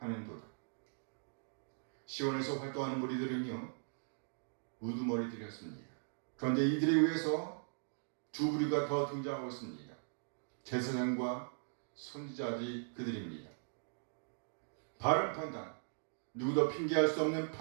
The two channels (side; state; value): left; silent; digital silence